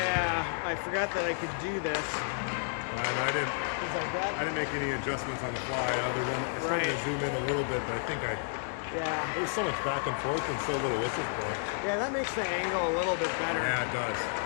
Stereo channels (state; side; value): silent; right; digital silence